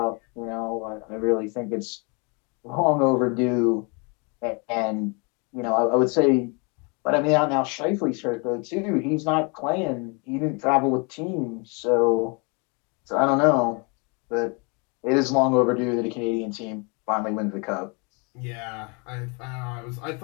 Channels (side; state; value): right; quieter; 32.8 dB